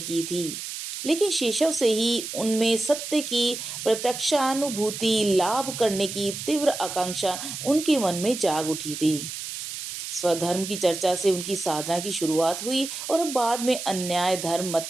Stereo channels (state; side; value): noise; right; hiss, 7 dB below the sound